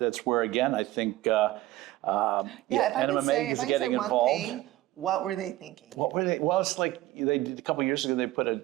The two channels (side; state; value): left; quieter; 16.5 dB